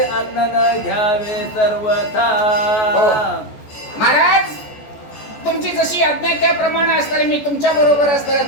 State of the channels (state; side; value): late; right; 14 ms